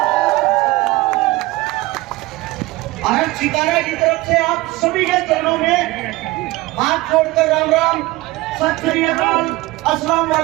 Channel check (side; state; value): left; quieter; 20.1 dB